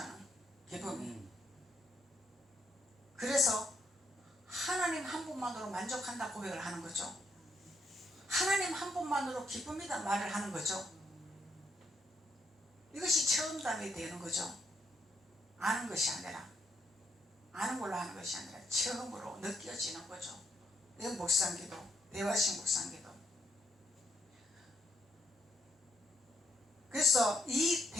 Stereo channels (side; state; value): both; normal; correlation 0.76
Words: 기쁨이. 그래서 하나님 한 분만으로 만족한다 고백을 하는 거죠. 하나님 한 분만으로 기쁨이다 말을 하는 거죠. 이것이 체험담이 되는 거죠. 아는 것이 아니라, 아는 걸로 하는 것이 아니라 처음으로 느껴지는 거죠. 이건 묵상기도, 대화식 묵상기도. 그래서 이